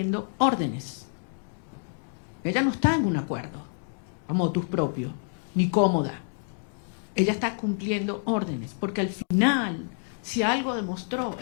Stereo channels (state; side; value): silent; right; 59 dB below the other